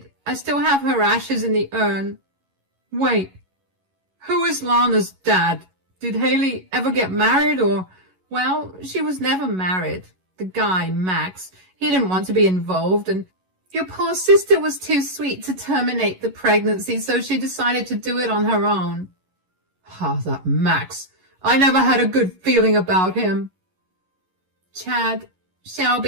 I still have her ashes in the urn." "Wait, who is Lana's dad? Did Haley ever get married or—" "Well, she was never married. The guy, Max, he didn't want to be involved, and your poor sister was too sweet to terminate the pregnancy, so she decided to do it on her own." "Ah, that Max. I never had a good feeling about him." "Chad,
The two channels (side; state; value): left; late; 11 ms